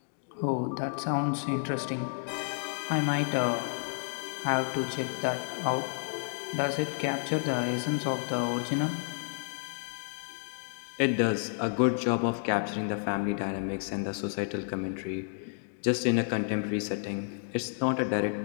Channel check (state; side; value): silent; right; digital silence